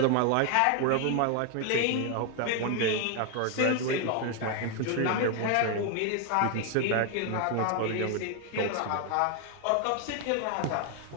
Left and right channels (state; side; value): different; both; correlation 0.01